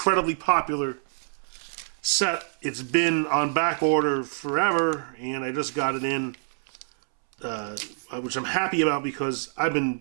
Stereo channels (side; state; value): left; silent; 61 dB below the other